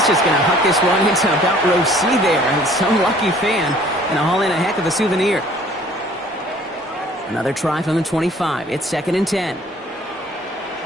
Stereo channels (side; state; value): both; normal; correlation 0.55